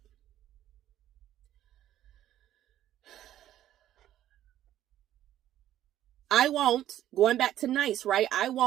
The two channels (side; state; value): left; quieter; 12.4 dB